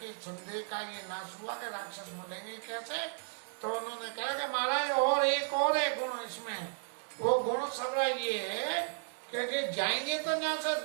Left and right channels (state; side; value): silent; left; 55 dB below the other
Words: संदेह का ये नाश हुआ कि राक्षस मरेंगे कैसे। तो उन्होंने कहा कि महाराज और एक और है गुण इसमें, वो गुण सबरा ये है कि जाएंगे तो यहाँ से